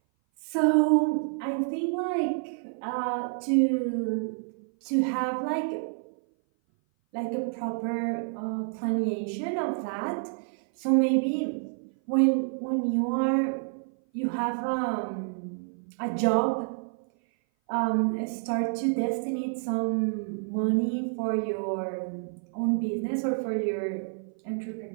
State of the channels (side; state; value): left; silent; 57 dB below the other